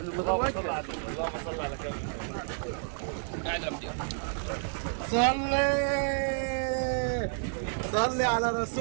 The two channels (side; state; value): left; silent; 58 dB below the other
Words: اللهم صل على النبي. اللهم صل على كامل. قاعد يا مدير. صلي على